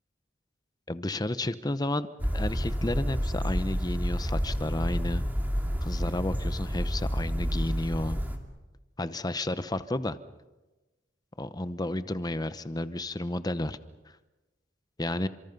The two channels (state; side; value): normal; both; correlation 0.87